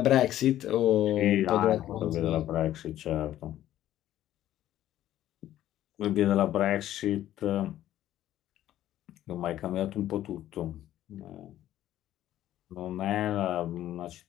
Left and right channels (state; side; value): quieter; right; 12.9 dB